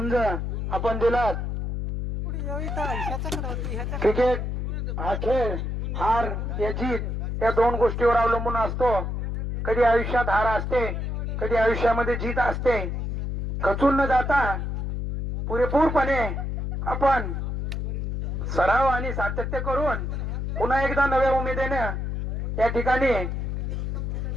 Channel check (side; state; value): left; noise; hum, 2 dB below the sound